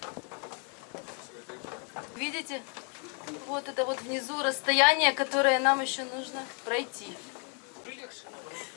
Видите? Вот это вот внизу расстояние, которое нам еще нужно пройти.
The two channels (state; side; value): quieter; right; 35.4 dB